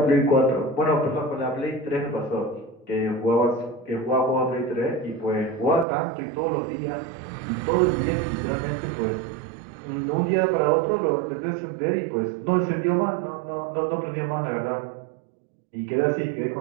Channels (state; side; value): drops out; left; at 5.9 s